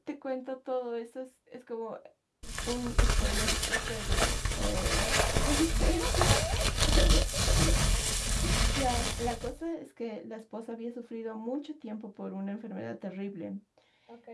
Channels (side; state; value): both; identical; correlation 1.00